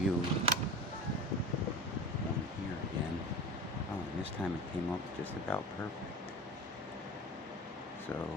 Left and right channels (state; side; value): normal; both; correlation 0.32